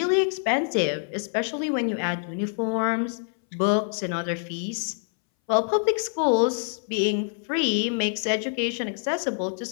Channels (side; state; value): right; silent; 61 dB below the other